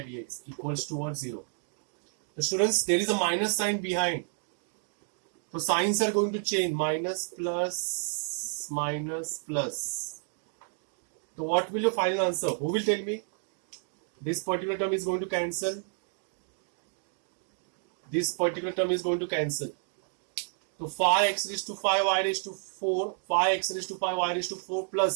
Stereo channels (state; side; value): silent; left; 58 dB below the other